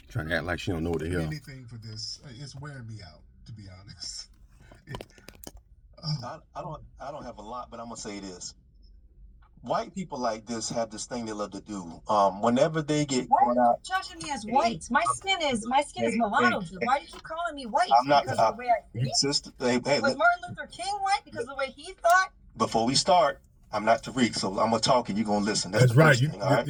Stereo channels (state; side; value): identical; both; correlation 1.00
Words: Trying to act like she don't know what the hell. Anything for this, it's wearing me out, to be honest. I don't have a lot, but I'm gonna say this. White people like this have this thing they love to do. Whenever they get caught out, judging me as white. My skin is mulatto. Why do you keep calling me white? I'm not. Because of the way I think? Sister, Was Martin Luther King white because of the way he thought? Before we start, I'm not Tariq, so I'm gonna talk and you're gonna listen. That's the right. first thing, all right?